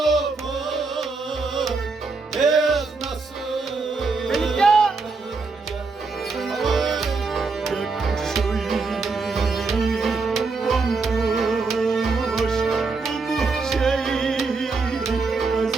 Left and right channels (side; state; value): left; quieter; 4.2 dB